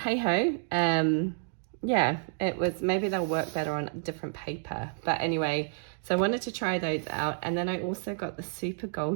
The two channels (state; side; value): silent; left; 58 dB below the other